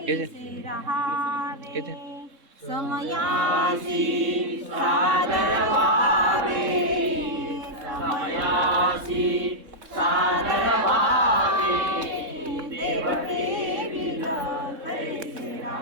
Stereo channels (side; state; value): left; late; 3.7 ms